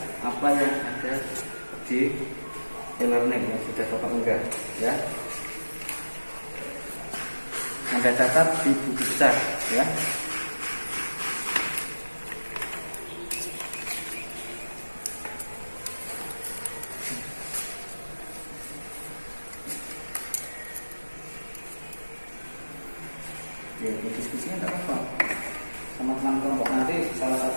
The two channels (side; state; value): both; inverted; correlation -1.00